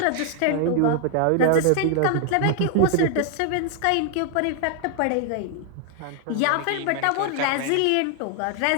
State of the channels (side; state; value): both; different; correlation 0.00